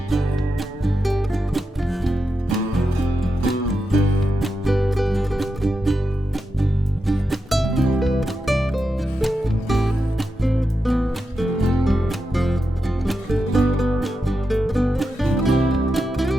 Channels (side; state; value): both; normal; correlation 0.87